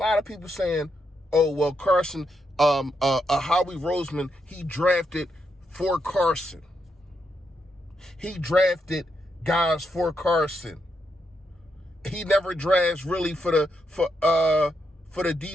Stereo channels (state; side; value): normal; both; correlation 0.81